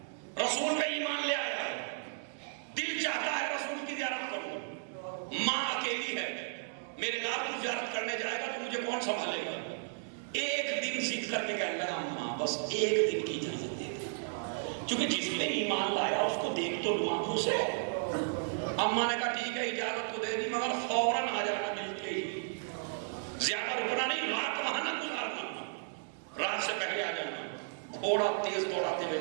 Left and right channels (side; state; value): left; silent; digital silence